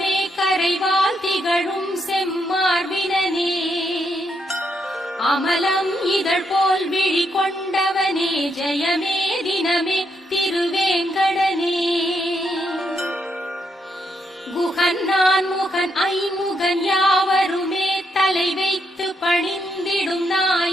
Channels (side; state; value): both; normal; correlation 0.78